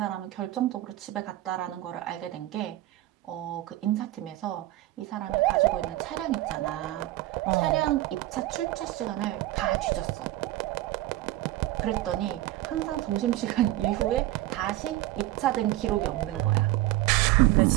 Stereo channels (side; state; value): left; quieter; 16.0 dB